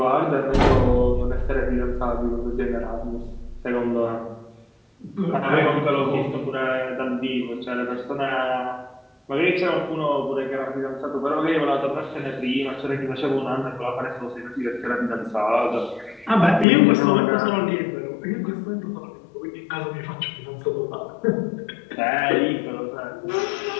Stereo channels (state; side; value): drops out; right; at 16.7 s